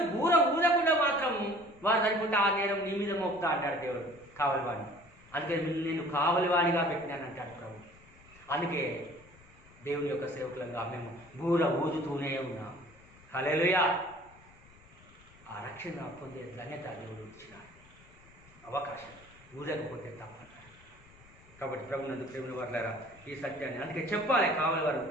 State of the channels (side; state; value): left; noise; rumble, 25 dB below the sound